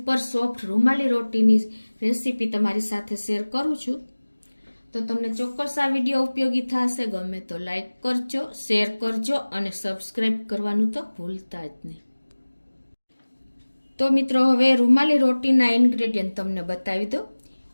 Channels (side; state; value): both; inverted; correlation -1.00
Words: સોફ્ટ રૂમાલી રોટીની રેસીપી તમારી સાથે શેર કરું છું। તો તમને ચોક્કસ આ વિડીયો ઉપયોગી થશે। ગમે તો લાઈક કરજો, શેર કરજો અને સબસ્ક્રાઇબ કરવાનું તો ભૂલતા જ નહીં। તો મિત્રો હવે રૂમાલી રોટીના ઇન્ગ્રેડિયન્ટ તમને બતાવી દો।